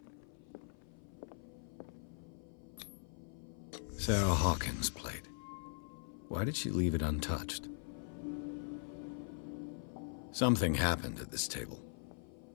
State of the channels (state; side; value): silent; right; 51 dB below the other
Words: Sarah Hawkins' plate. Why did she leave it untouched? Something happened at this table.